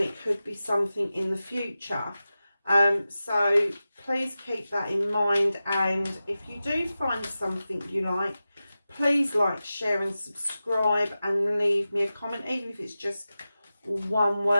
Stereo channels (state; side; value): inverted; both; correlation -0.94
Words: it could be something in the future. So please keep that in mind, and if you do find something you like, please like, share and subscribe, and leave me a comment, even if it's just one